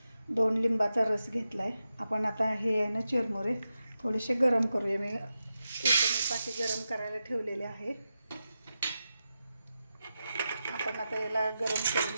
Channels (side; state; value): both; inverted; correlation -0.89